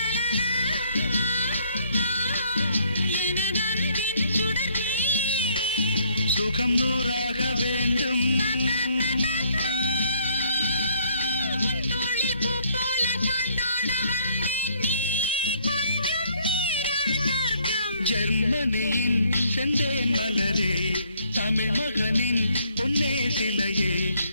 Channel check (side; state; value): both; inverted; correlation -0.65